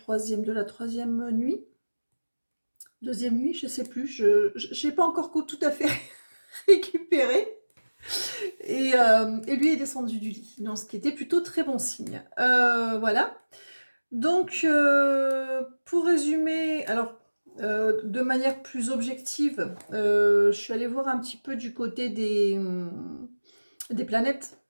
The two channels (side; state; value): both; inverted; correlation -1.00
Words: la troisième nuit. Deuxième nuit, je sais plus, je n'ai pas encore tout à fait récupéré. Et lui est descendu du lit, donc ce qui était plutôt très bon signe. Voilà. Donc, pour résumer, alors de manière plus objective, je suis allée voir un petit peu du côté des planètes,